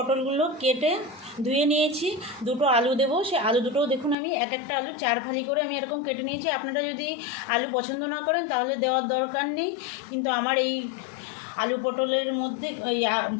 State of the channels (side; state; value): right; drops out; at 4.2 s